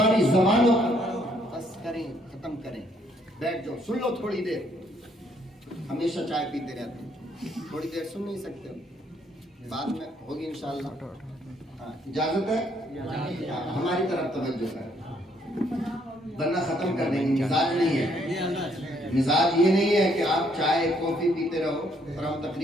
زبانوں بس کریں، ختم کریں، بیٹھ جاؤ، سن لو تھوڑی دیر. ہمیشہ چائے پیتے رہتے ہیں، تھوڑی دیر سن نہیں سکتے، بعد میں ہوگی انشاءاللہ. اجازت ہے؟ ہماری طرف توجہ کریں، ورنہ ختم کر دیں گے. مزاج نہیں ہے، مزاج یہ نہیں ہے کہ آپ چائے کافی پیتے رہو اور ہم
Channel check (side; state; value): both; normal; correlation 0.69